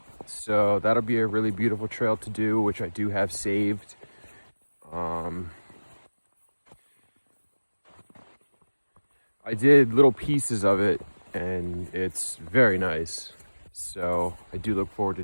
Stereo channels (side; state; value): both; inverted; correlation -1.00